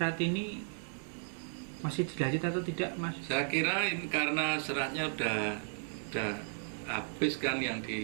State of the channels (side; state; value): left; silent; 55 dB below the other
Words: ini masih dilanjut atau tidak, Mas? Saya kira ini karena seratnya udah habis kan yang